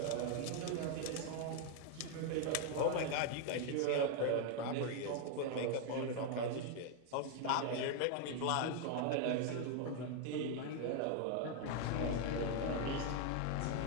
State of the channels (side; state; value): both; different; correlation 0.00